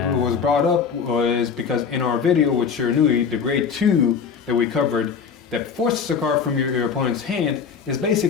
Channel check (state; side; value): quieter; right; 6.4 dB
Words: was brought up was because in our video with Shiranui, the grade 2 that we covered that forces a card from your opponent's hand is